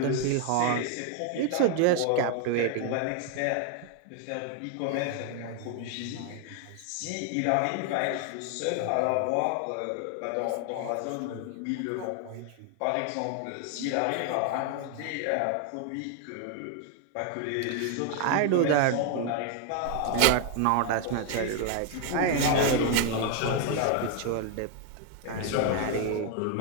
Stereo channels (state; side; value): different; both; correlation 0.00